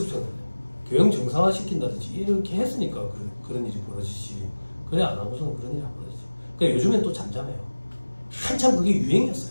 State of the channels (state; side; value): inverted; both; correlation -1.00